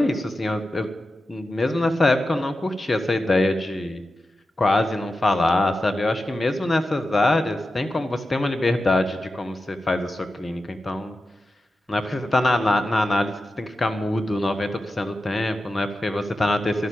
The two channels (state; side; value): normal; both; correlation 0.91